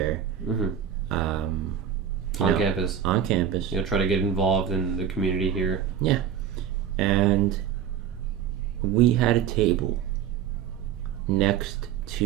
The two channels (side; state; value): left; quieter; 8.8 dB